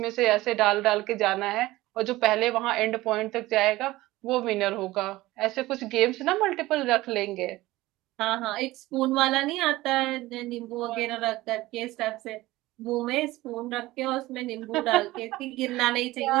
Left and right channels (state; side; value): quieter; left; 18.2 dB